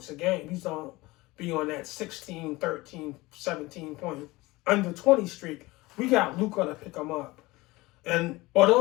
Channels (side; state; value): right; quieter; 20.9 dB